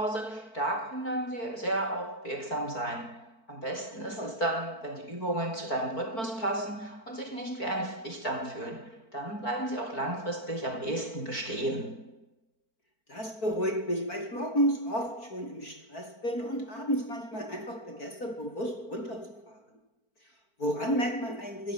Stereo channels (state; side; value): late; right; 4.5 ms